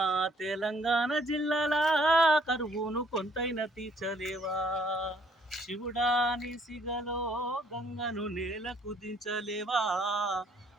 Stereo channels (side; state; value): both; normal; correlation 0.64